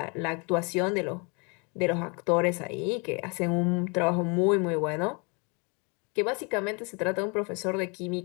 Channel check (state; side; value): quieter; right; 32.1 dB